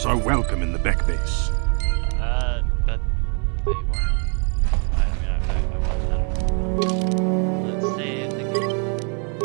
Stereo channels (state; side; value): quieter; left; 39.9 dB